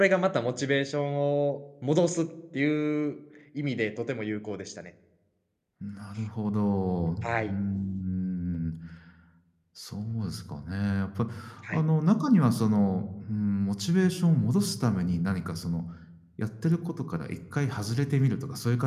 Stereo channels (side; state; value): both; identical; correlation 1.00